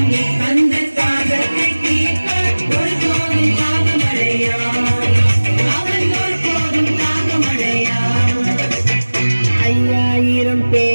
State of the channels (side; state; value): both; inverted; correlation -1.00